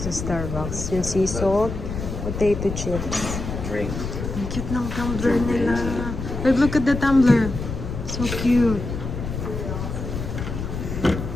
sa Starbucks. Yung sea salt, potato chips. Drink. Ang cute ng tumbler nila. Like, look at the tumbler. So cute.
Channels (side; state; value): left; noise; rumble, 5 dB below the sound